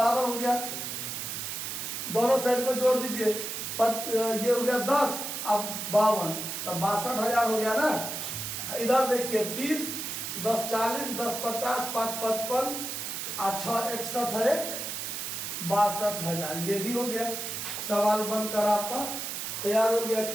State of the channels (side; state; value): right; noise; hiss, 5 dB below the sound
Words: हो गया। दोनों साइड को जोड़ दीजिए, ये हो गया 10, अब 52, तब 62,000 हो गया ना। इधर देखिए 30, 10 40, 10 50, 5 55, 6 61 है, 62,000, ये भी हो गया। सवाल बनकर आपका तैयार हो गया।